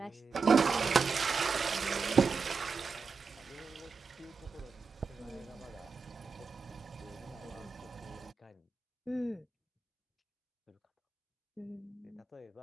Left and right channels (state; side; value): quieter; left; 4.9 dB